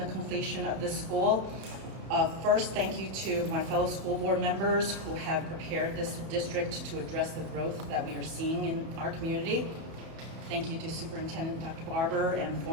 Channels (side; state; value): left; late; 31 ms